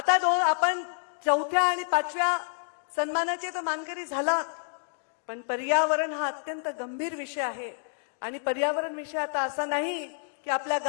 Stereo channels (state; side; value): silent; right; digital silence